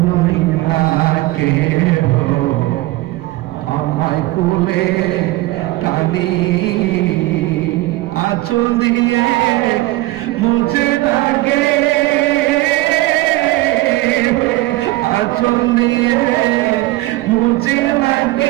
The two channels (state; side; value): quieter; left; 18.7 dB